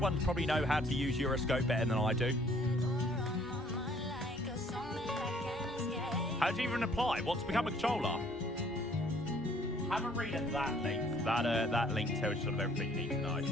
probably know how to use Euroscope better than I do. How do you even apply? What to become a controller? Have a read at that link. That link tells you sort of everything you need to know.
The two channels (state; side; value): normal; both; correlation 0.60